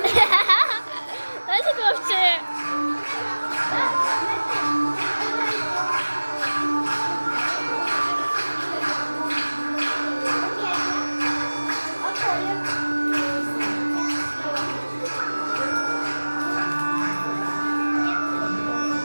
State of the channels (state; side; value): inverted; both; correlation -1.00